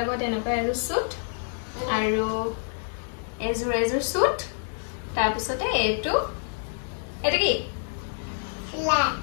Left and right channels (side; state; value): right; silent; digital silence